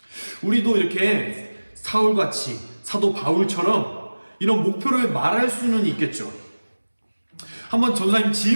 우리도 이렇게 사울같이 사도 바울처럼 이런 목표를 말할 수는 있겠죠. 한번 전사님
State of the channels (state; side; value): inverted; both; correlation -1.00